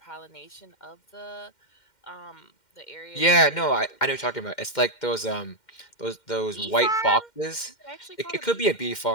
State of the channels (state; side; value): late; right; 2.1 ms